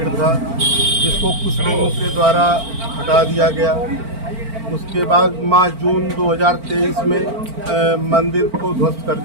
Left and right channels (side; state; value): left; late; 4.4 ms